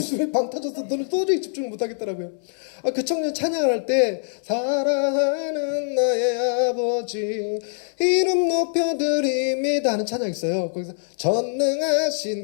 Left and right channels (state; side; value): silent; right; 63 dB below the other